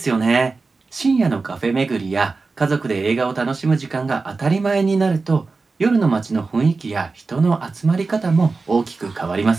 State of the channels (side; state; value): left; quieter; 4.0 dB